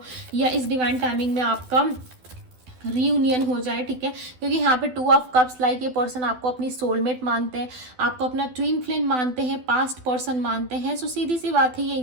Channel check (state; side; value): late; left; 12 ms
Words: या इस डिवाइन टाइमिंग में आपका रीयूनियन हो जाए, ठीक है, क्योंकि यहाँ पे 2 ऑफ कप्स लाइक ये पर्सन आपको अपनी सोलमेट मानते हैं, आपको अपना ट्विन फ्लेम मानते हैं, पास्ट पर्सन मानते हैं। सो सीधी सी बात है, ये